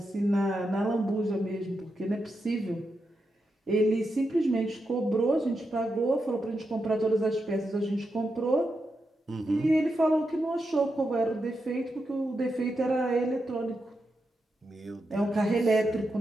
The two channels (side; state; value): both; normal; correlation 0.86